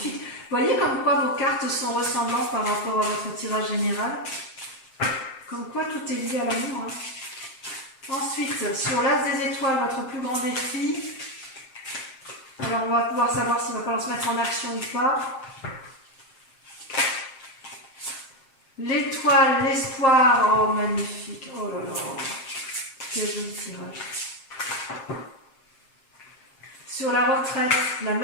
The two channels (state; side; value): late; right; 7.6 ms